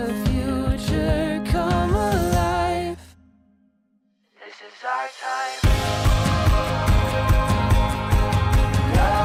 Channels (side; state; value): both; identical; correlation 1.00